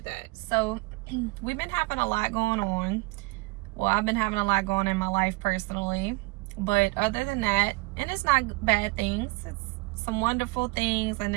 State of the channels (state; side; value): quieter; left; 24.8 dB